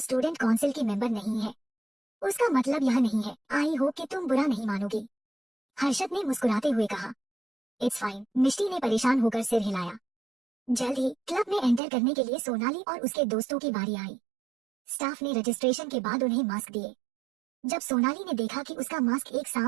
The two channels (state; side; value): drops out; left; at 11.8 s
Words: काउंसिल की मेंबर नहीं है। उसका मतलब यह नहीं है। आई होप कि तुम बुरा नहीं मानोगी, हर्षद ने मुस्कुराते हुए कहा। इट्स फाइन, मिष्टी ने परेशान होकर सिर हिलाया। जल्द ही क्लब में एंटर करने के लिए सोनाली और उसके दोस्तों की बारी आई। स्टाफ ने रजिस्ट्रेशन के बाद उन्हें मास्क दिए। जब सोनाली ने देखा कि उसका मास्क एक